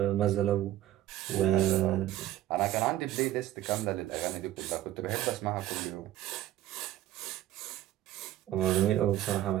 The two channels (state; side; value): quieter; left; 13.6 dB